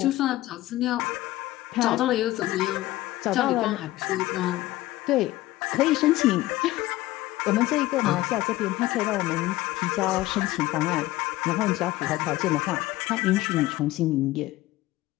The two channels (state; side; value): quieter; right; 17.0 dB